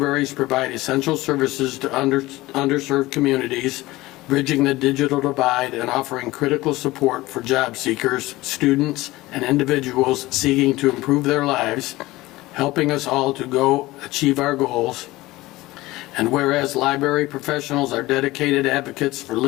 provide essential services to underserved communities, bridging the digital divide and offering critical support for job seekers, students, and individuals seeking to improve their lives, helping us all to go achieve our goals. And whereas library professionals are dedicated advocates for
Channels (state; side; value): quieter; right; 18.9 dB